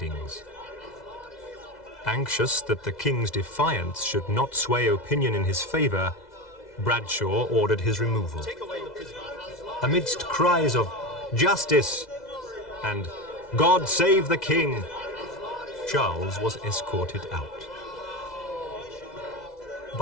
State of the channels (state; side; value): late; right; 2.0 ms